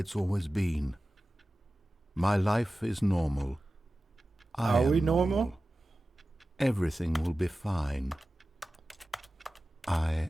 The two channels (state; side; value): normal; both; correlation 0.95